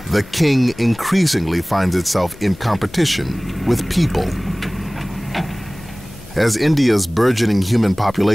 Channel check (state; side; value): noise; left; hum, 21 dB below the sound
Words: the king increasingly finds itself in competition with people. As India's burgeoning human